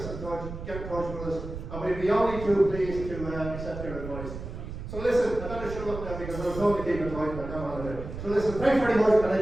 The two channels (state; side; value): noise; right; rumble, 9 dB below the sound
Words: in touch, get in touch with us, and we'd be only too pleased to accept your advice. So listen, I better shut up now because I was told to keep it tight, but I don't want to do it. So listen, thanks very much and